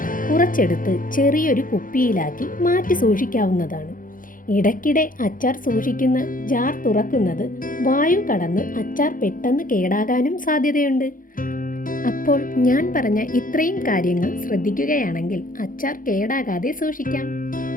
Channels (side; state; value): right; late; 0.40 ms